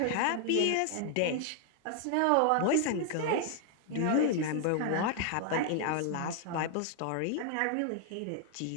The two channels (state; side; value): different; both; correlation 0.00